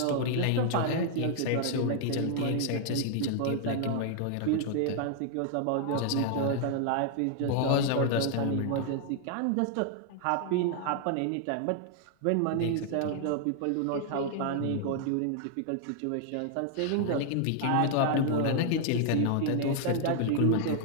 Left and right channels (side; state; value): both; different; correlation 0.00